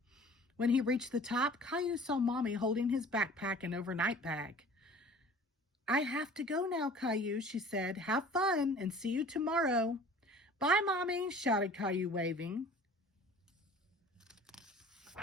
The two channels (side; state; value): both; normal; correlation 0.46